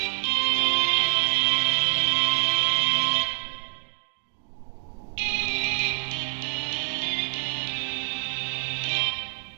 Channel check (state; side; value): silent; left; digital silence